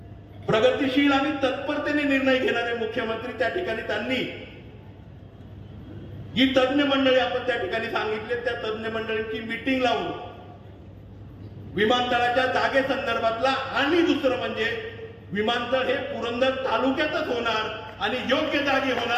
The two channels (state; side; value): identical; both; correlation 1.00